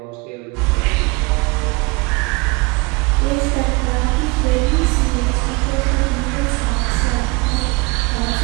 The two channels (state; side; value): quieter; left; 26.2 dB